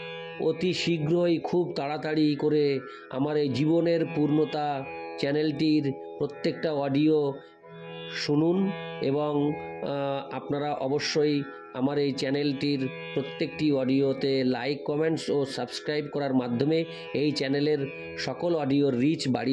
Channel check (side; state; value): both; identical; correlation 1.00